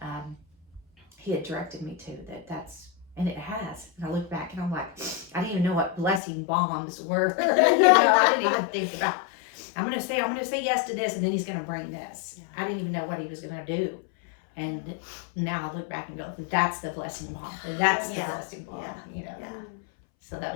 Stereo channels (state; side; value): drops out; right; at 6.2 s